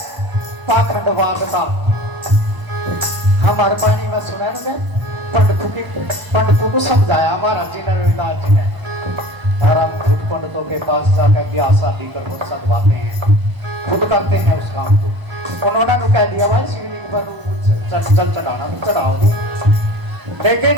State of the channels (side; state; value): left; late; 1.0 ms